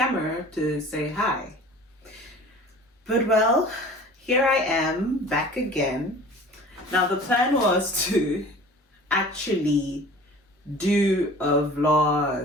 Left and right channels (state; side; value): normal; both; correlation 0.44